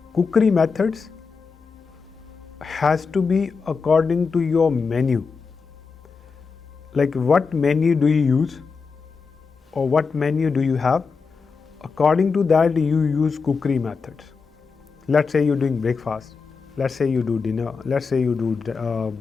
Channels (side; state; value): right; quieter; 5.0 dB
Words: cookery methods has to be according to your menu. Like what menu do you use or what menu do you have? According to that you use cookery methods. Let's say you're doing breakfast, let's say you do dinner, let's say you do